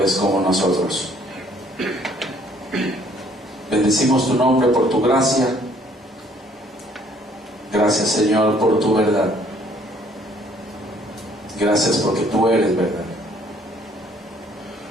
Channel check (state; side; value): normal; both; correlation 0.61